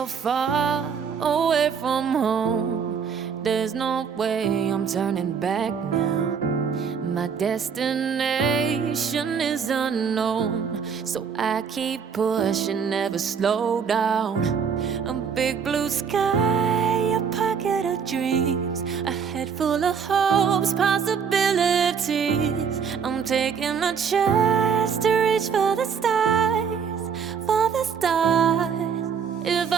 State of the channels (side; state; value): left; quieter; 6.6 dB